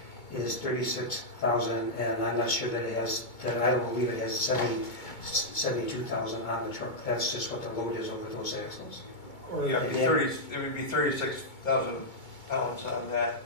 is 36,000, and I'm not sure that it has, I don't believe it has 72,000 on the truck. That's just what the load is over those axles. Yeah, it would be 36,000 pounds on that.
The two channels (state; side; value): late; right; 2.2 ms